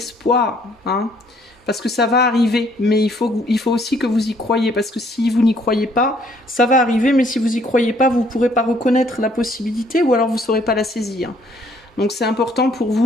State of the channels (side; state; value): both; normal; correlation 0.64